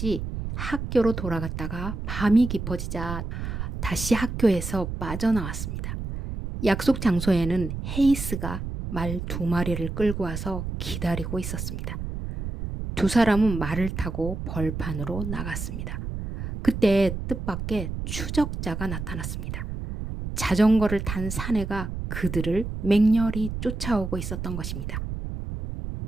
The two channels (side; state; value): right; noise; rumble, 5 dB below the sound